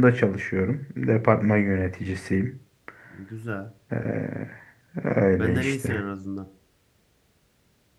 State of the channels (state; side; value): identical; both; correlation 1.00